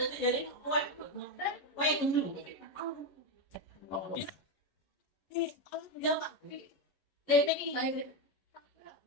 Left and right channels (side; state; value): right; late; 11 ms